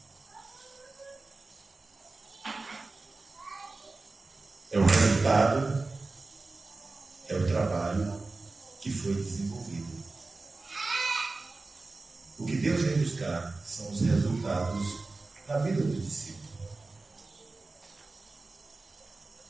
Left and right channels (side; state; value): left; quieter; 3.5 dB